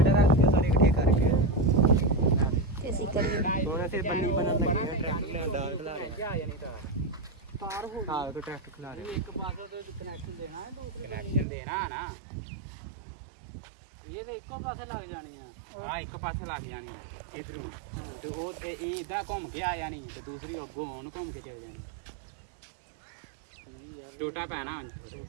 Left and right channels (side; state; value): left; drops out; at 11.5 s